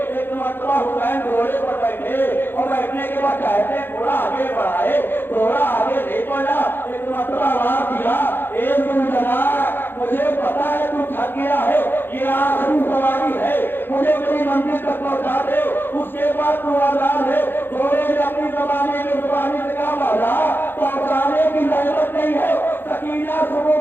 مرتبہ حسین گھوڑے پر بیٹھے اور بیٹھنے کے بعد کہتے ہیں تھوڑا آگے بڑھائے، تھوڑا آگے نہیں بڑھا. ایک مرتبہ آواز دیا، اے زلجنا مجھے پتا ہے تو تھک گیا ہے، یہ آخری سواری ہے، مجھے میری منزل تک پہنچا دے، اس کے بعد تو آزاد ہے. گھوڑے نے اپنی زبانی سے کہا مولا پہنچانے کی ضرورت نہیں ہے، سکینہ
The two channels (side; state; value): right; late; 0.10 ms